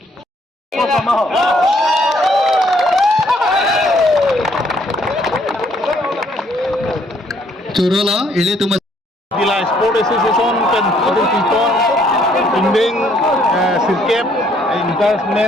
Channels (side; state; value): both; normal; correlation 0.66